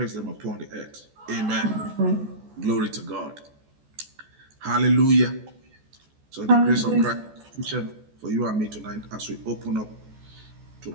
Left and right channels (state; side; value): late; left; 14 ms